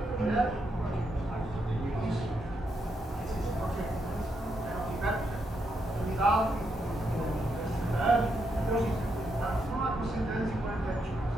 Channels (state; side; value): normal; both; correlation 0.80